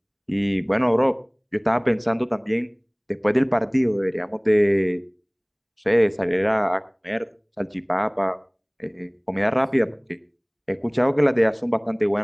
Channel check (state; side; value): identical; both; correlation 1.00